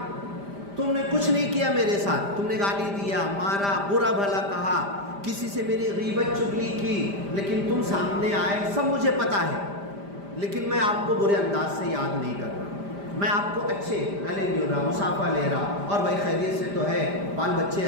تم نے کچھ نہیں کیا میرے ساتھ، تم نے گالی دیا، مارا، برا بھلا کہا، کسی سے میری غیبت چغلی کی، لیکن تم سامنے آئے، سب مجھے پتا ہے، لیکن میں آپ کو برے انداز سے یاد نہیں کر رہا، میں آپ کو اچھے گلے مل رہا، مصافحہ لے رہا، اور بھائی خیریت سے تو ہے، بال بچے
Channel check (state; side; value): late; left; 5.0 ms